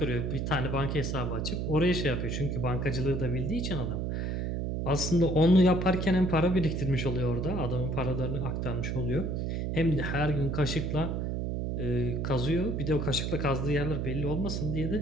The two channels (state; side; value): noise; right; hum, 1 dB below the sound